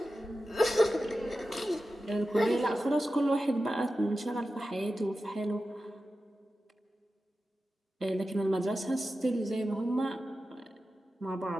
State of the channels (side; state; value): both; normal; correlation 0.93